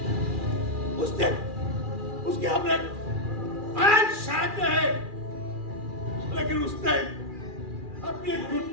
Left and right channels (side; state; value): left; late; 2.4 ms